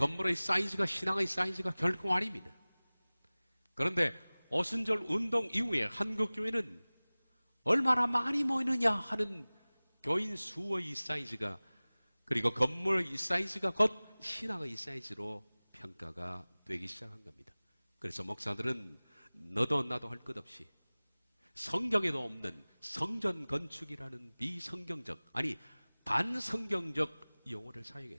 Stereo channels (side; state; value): both; inverted; correlation -0.99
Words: 사이즈가 신앙의 사이즈가 결코 아닙니다. 그런데 오순절 운동 이후에 한국교회는 얼마나 많이 모이느냐 하는 교인 수의 사이즈가 그리고 건물의 사이즈가 곧 신앙의 사이즈로 평가가 되기 시작한 겁니다. 그래서 목사들은 너도 나도 할 것 없이 성경에도 없는 성전 건축이라는 비성경적 아니 반성경적 용어를